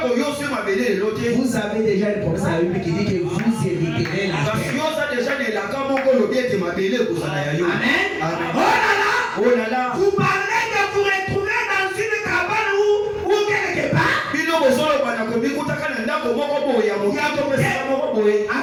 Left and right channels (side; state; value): both; identical; correlation 1.00